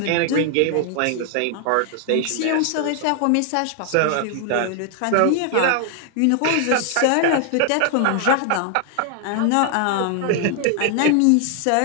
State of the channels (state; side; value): different; both; correlation 0.00